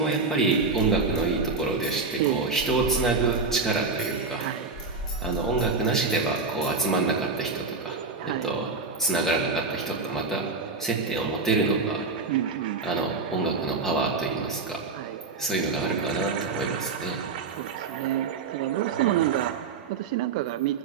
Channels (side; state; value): left; quieter; 4.3 dB